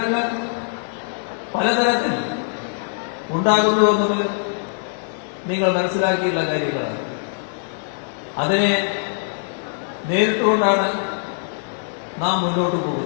പലതരത്തിൽ ഉണ്ടാകുന്നു എന്നത് നിങ്ങൾ മനസ്സിലാക്കിയുള്ള കാര്യങ്ങളാണ്. അതിനെ നേരിട്ടുകൊണ്ടാണ് നാം മുന്നോട്ട്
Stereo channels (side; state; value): right; silent; digital silence